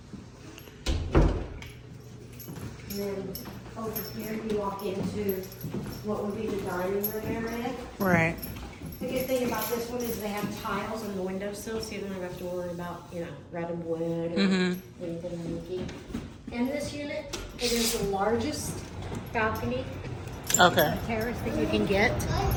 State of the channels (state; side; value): identical; both; correlation 1.00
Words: And then over here you walk into what would be the dining room area. Right. The good thing about this one is they have tiles on the windowsill, so you don't have to worry about, you know, red and wood or anything leaky. In this unit, it is the largest balcony terrace that you can get.